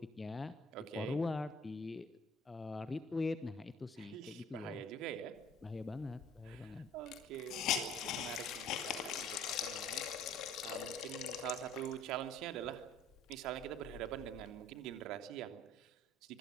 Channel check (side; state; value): both; normal; correlation 0.54